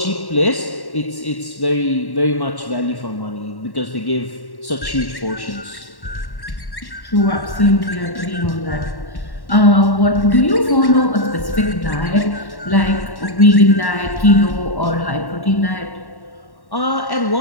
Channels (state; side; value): late; right; 1.1 ms